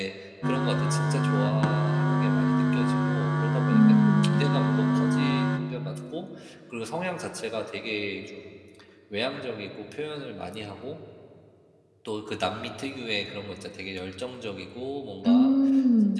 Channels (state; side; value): identical; both; correlation 1.00